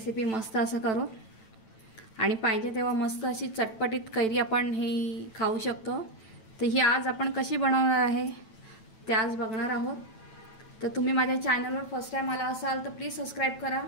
मस्त असं करू आणि पाहिजे तेव्हा मस्त अशी चटपटीत कैरी आपण ही खाऊ शकतो। तर ही आज आपण कशी बनवणार आहे ते आज बघणार आहोत। तर तुम्ही माझ्या चॅनलवर फर्स्ट टाइम आला असाल तर प्लीज सबस्क्राइब करा,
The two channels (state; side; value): late; right; 9.0 ms